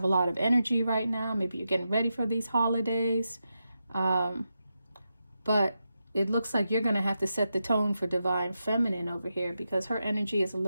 a lot of energy right now. Maybe you're getting ready for these holidays. But it looks like you're going to have to set the tone for Divine Feminine over here, because her energy is a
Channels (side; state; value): both; inverted; correlation -0.88